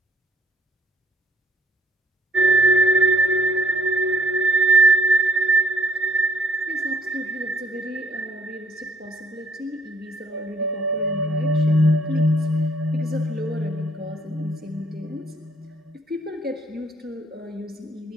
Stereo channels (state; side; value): normal; both; correlation 0.63